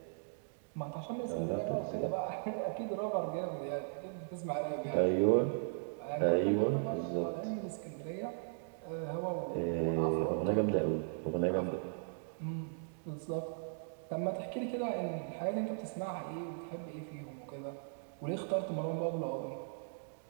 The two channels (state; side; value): silent; left; digital silence